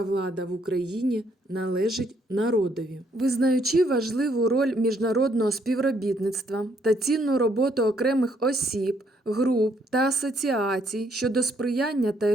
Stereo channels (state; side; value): normal; both; correlation 0.70